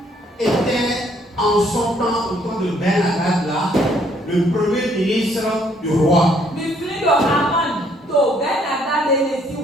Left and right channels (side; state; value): both; normal; correlation 0.66